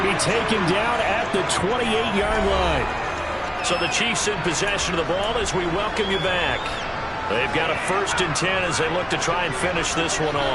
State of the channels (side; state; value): both; identical; correlation 1.00